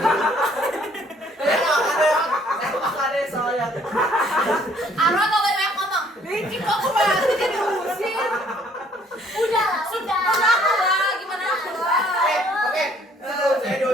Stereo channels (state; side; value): normal; both; correlation 0.61